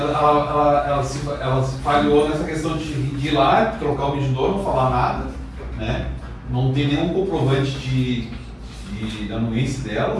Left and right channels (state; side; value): identical; both; correlation 1.00